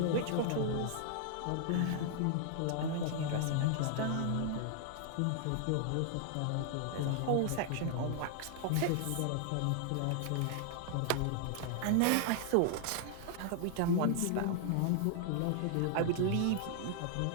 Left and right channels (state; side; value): different; both; correlation 0.00